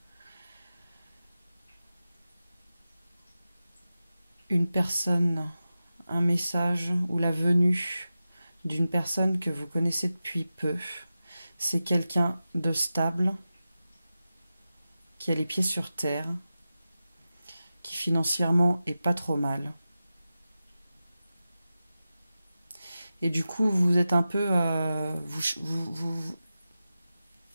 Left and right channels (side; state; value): both; inverted; correlation -0.93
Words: une personne, un message ou la venue d'une personne que vous connaissez depuis peu. C'est quelqu'un de stable, qui a les pieds sur terre, qui financièrement est pas trop mal. Et du coup, vous êtes un peu...